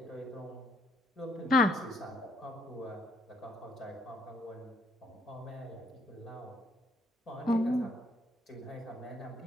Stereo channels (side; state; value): both; normal; correlation 0.69